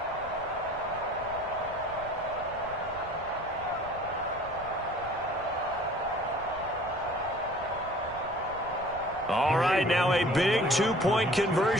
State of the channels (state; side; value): noise; right; rumble, 18 dB below the sound